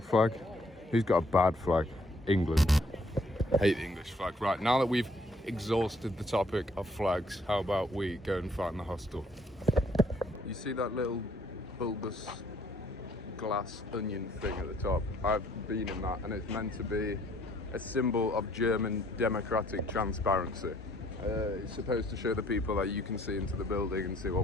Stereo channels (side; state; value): both; normal; correlation 0.64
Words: flag. Who's got a bad flag? England. Hate the English flag. Right, now that we've exhausted the topic of flags, how about we go and find the hostel? You see that little bulbous glass onion thing at the top? I've been in that, and it's meant to be a symbol of German democratic transparency. It's supposed to show the people that you can see into the building and see